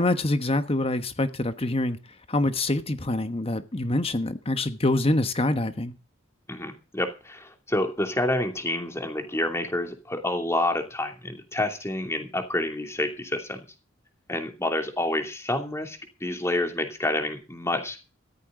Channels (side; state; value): both; normal; correlation 0.62